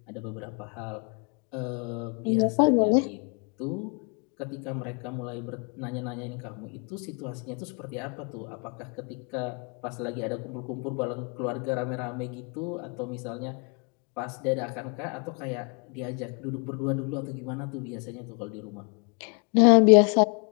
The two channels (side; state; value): right; quieter; 37.2 dB